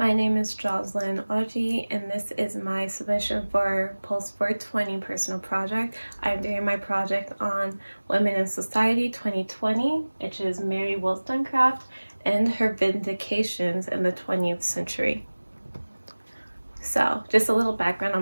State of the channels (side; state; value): both; inverted; correlation -1.00